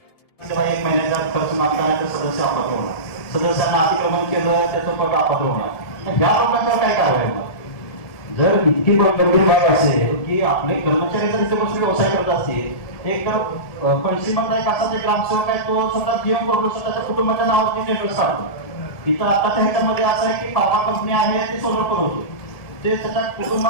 एक महिन्याचा खर्च मागताना सदस्य अपात्र होणार, सदस्यांना अतिक्रमण केलं त्याचं पद अपात्र होणार। या लोकांच्यावर काय कारवाई होणार? जर इतकी गंभीर बाब असेल की आपले कर्मचारी जर इथे बसून व्यवसाय करत असतील, एक तर पणशीमधला एक असा ग्रामसेवक आहे, तो स्वतः जीवन करून स्वतःच्या कुटुंबाच्या नावावरती टेंडर्स काढतो। इथं आताच्या ह्याच्यामध्ये असं आहे की फार्मा कंपनी आहे, ते सोलर पुरवतो, ते त्याच्या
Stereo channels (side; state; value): right; late; 1.7 ms